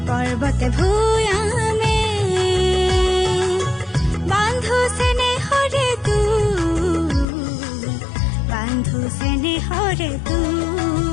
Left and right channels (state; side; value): drops out; right; at 7.2 s